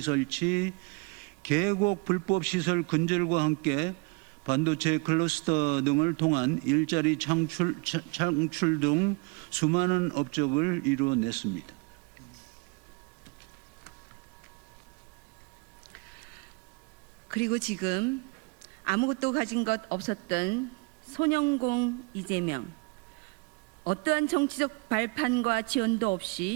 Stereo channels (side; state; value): left; quieter; 29.4 dB